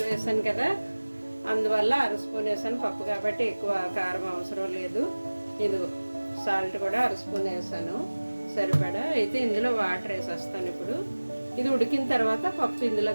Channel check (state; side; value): inverted; both; correlation -1.00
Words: వేసాను కదా, అందువల్ల 1/2 స్పూన్ వేసాను. పప్పు కాబట్టి ఎక్కువ కారం అవసరం లేదు. ఇదిగో సాల్ట్ కూడా 1/2 స్పూన్ వేసాను సరిపడా. అయితే ఇందులో వాటర్ వేసేస్తాను. ఇప్పుడు ఇది ఉడికిన తర్వాత పప్పు